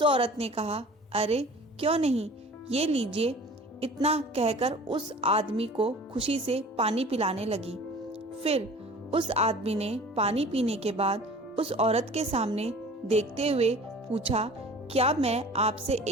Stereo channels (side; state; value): both; normal; correlation 0.44